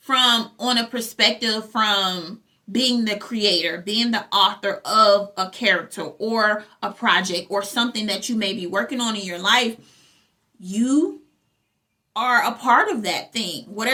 on a perspective from being the creator, being the author of a character or a project or something that you may be working on in your life. You are a part of that thing.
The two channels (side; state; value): both; identical; correlation 1.00